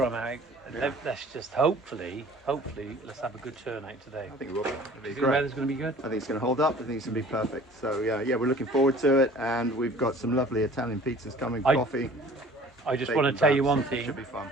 out. Yeah. Let's just hopefully let's have a good turnout today. I think it will be. Do you think the weather's going to be good? I think it's going to hold up. I think it's going to be perfect. So yeah, we're looking forward to it, and we've got some lovely Italian pizzas coming, coffee. I just want to tell you one thing. Should be fun.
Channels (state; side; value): normal; both; correlation 0.49